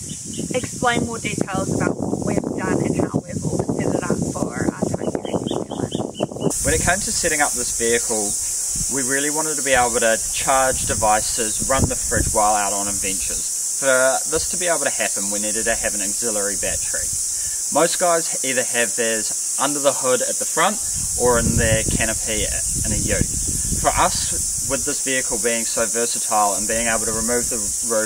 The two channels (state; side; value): identical; both; correlation 1.00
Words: explain more details about what we've done and how we've all set it up for our time here in New Zealand. When it came to setting up this vehicle, we really wanted to be able to charge devices, run the fridge while out on adventures. For this to be able to happen, we needed to have an auxiliary battery. Most guys either have theirs under the hood at the front or in their canopy in a ute. For us, with this vehicle being so versatile and being able to remove the